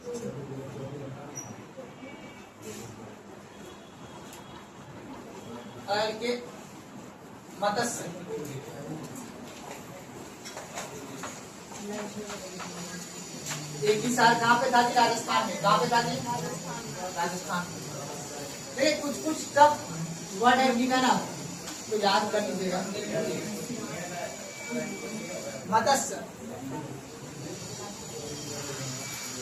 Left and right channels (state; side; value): identical; both; correlation 1.00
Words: के मत्स्य, एक ही साल कहाँ पे था जी? राजस्थान में। कहाँ पे था जी? राजस्थान में। देखिए कुछ कुछ टफ वर्ड है ना, तो याद कर लीजिएगा। मत्स्य,